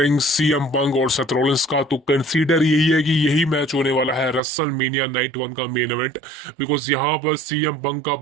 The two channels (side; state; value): left; drops out; at 4.4 s